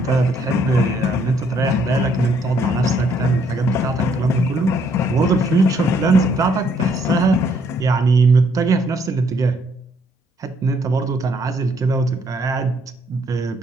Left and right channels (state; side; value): normal; both; correlation 0.68